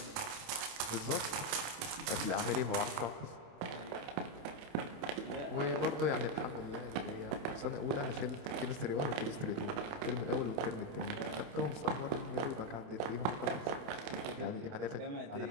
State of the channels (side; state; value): left; late; 28 ms